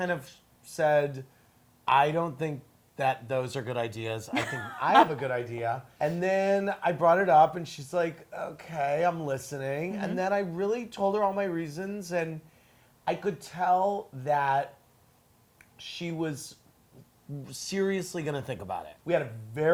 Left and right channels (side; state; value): both; identical; correlation 1.00